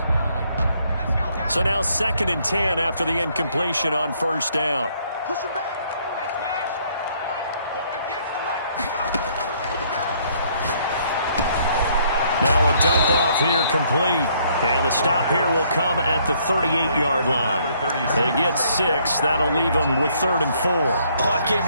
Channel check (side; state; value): both; inverted; correlation -0.66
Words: So now 2nd and 10 after the incompletion on first down. Push him back. Now a dump off here complete. And the stop here will come at the 38-yard line. They get 6. That'll leave them with 3rd and 4. Oh, I came